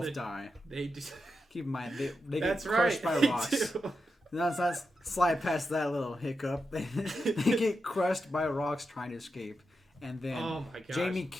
die. They do. Keep in mind, they That's get crushed right. by rocks. Let's not slide past that little hiccup. They get crushed by rocks trying to escape. And then Oh my gosh. Jaime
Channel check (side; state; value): both; normal; correlation 0.87